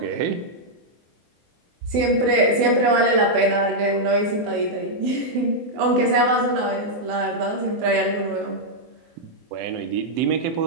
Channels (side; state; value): left; late; 24 ms